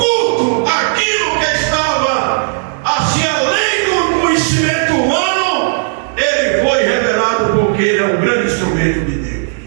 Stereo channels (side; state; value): left; silent; digital silence